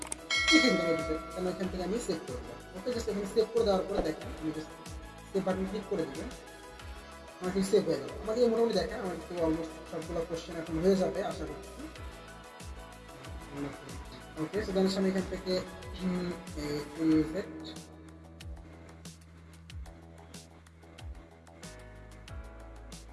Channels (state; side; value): identical; both; correlation 1.00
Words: লিখে দিলাম এ টু জেড। কারণ এখান থেকে আমি সেভ করে দিলাম। ওকে, জাস্ট এখানে সেভ করে দেওয়ার পরে দেখেন আমি জাস্ট সেভ বাটন ক্লিক করে দিবেন, আমার কিন্তু সেভ হয়ে গেল। আমাকে মোটামুটি দেখেন আমার তো অলমোস্ট সবগুলো কোশ্চেন এখন হয়ে যাবে আশা করছি। ওকে, সো দেন আমি এখান থেকে